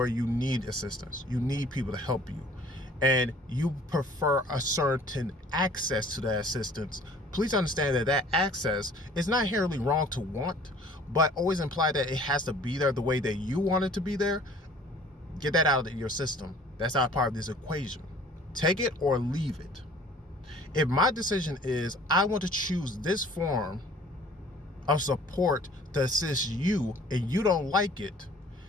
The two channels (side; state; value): both; normal; correlation 0.51